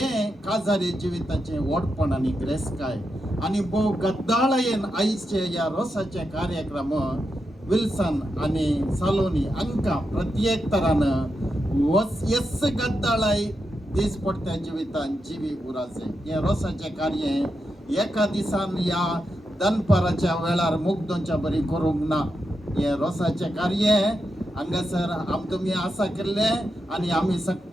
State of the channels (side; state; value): both; normal; correlation 0.86